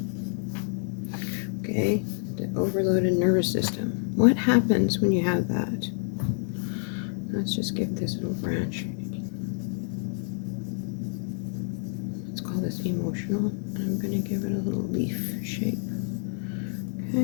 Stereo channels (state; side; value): silent; right; digital silence